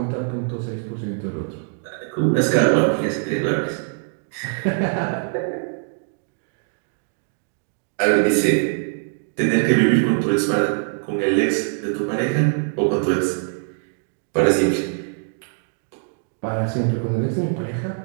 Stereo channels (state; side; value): silent; left; 64 dB below the other